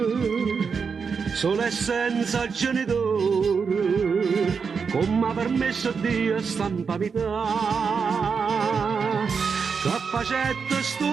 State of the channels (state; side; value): quieter; left; 5.7 dB